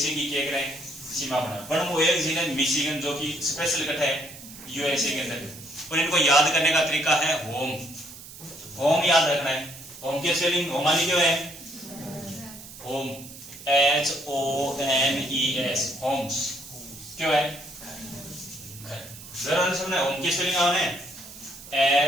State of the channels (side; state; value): right; noise; hiss, 16 dB below the sound